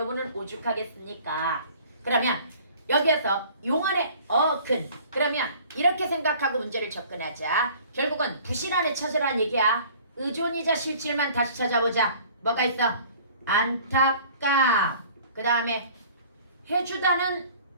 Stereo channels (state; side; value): inverted; both; correlation -0.50